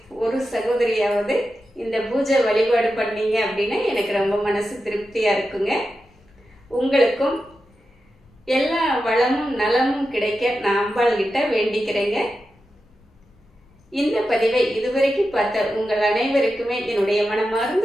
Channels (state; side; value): normal; both; correlation 0.90